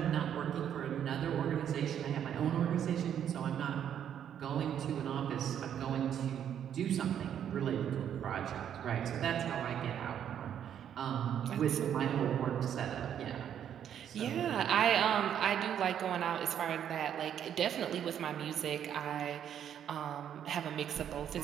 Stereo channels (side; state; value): left; quieter; 9.4 dB